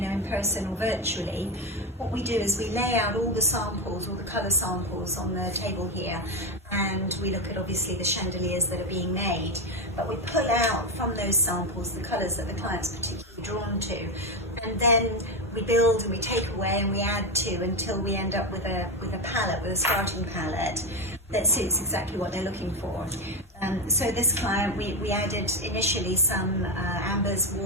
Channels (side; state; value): both; normal; correlation 0.11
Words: person or virtually, what we do is we lay out all the samples, all the colour samples on the table here, and we look at obviously the chandeliers that are being made, but we pull out from those samples the colours that the client's particularly drawn to, and then we build and we take away and we add to until we end up with a palette, with a starting palette that suits exactly what they're looking for. So this client, we added initially some ambers,